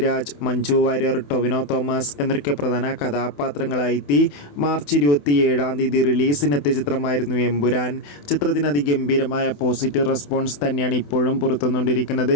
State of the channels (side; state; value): right; late; 28 ms